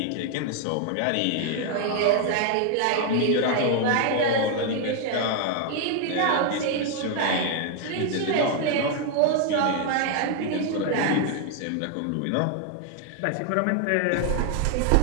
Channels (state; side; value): different; both; correlation 0.00